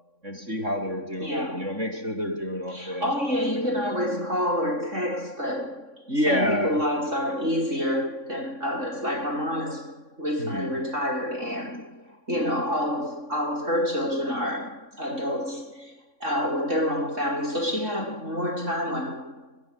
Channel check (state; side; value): late; left; 3.6 ms